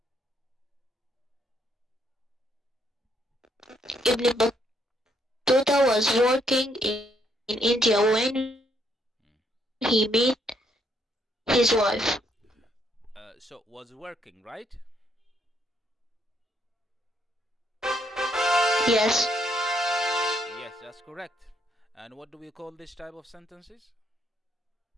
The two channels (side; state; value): both; normal; correlation 0.72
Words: Ibn Battuta was working in India when he met his wife. So was working, right? Yes. Yes, that's correct. And what do we call this type of sentences?